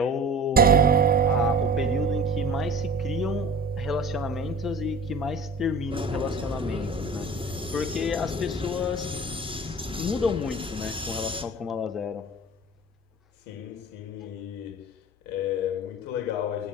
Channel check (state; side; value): normal; both; correlation 0.39